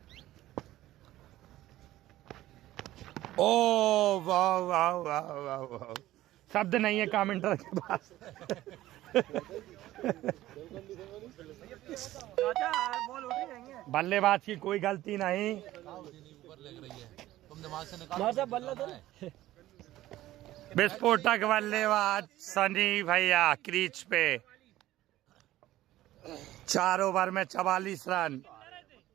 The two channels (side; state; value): left; quieter; 15.2 dB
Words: ओ वाह वाह वाह वाह वाह, शब्द नहीं है कमेंटर के पास। बल्लेबाज की कोई गलती नहीं। विस्फोटक बल्लेबाज सनी भैया क्रीज पे। 4 ओवर में 44 रन।